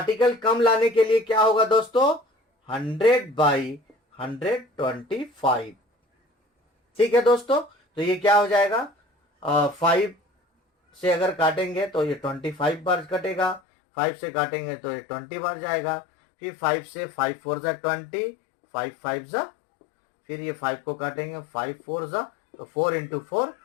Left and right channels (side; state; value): right; drops out; at 13.6 s